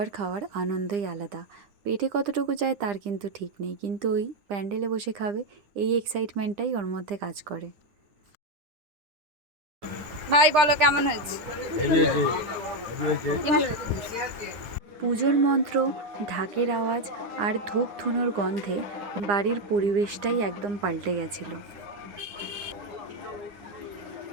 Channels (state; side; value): late; left; 10 ms